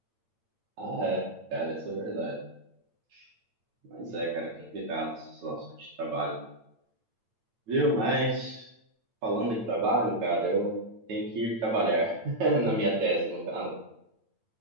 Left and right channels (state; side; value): late; left; 8.9 ms